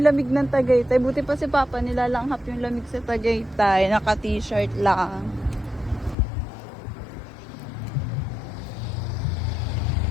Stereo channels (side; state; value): right; drops out; at 6.2 s